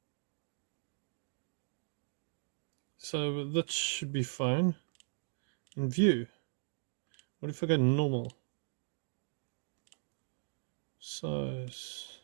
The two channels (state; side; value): silent; left; digital silence